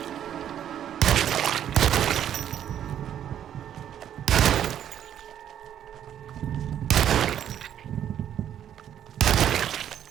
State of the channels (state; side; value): quieter; left; 10.1 dB